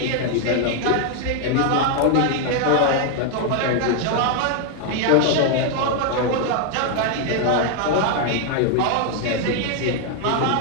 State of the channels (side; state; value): both; different; correlation 0.00